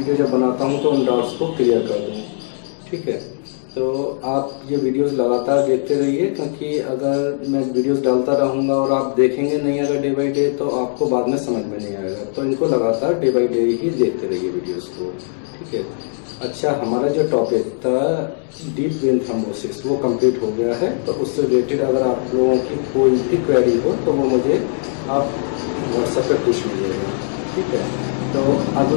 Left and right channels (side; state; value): right; silent; digital silence